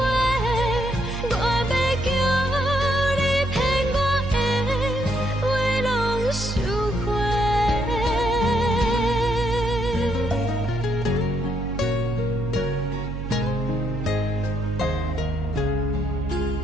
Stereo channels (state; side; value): noise; right; hum, 6 dB below the sound